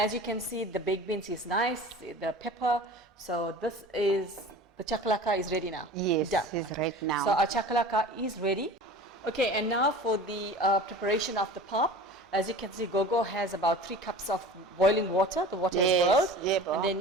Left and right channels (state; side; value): normal; both; correlation 0.39